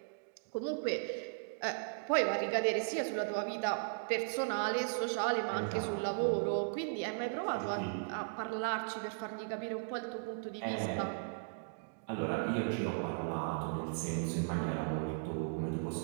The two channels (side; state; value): left; silent; digital silence